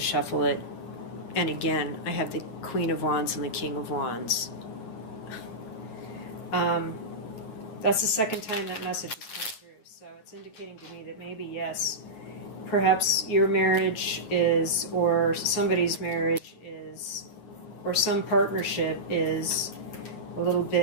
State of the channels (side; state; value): right; late; 9.8 ms